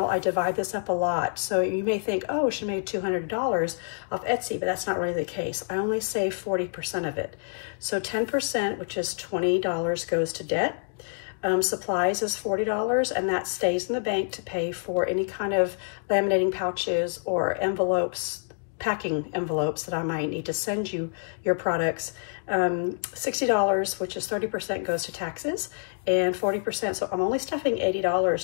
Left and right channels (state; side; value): silent; right; digital silence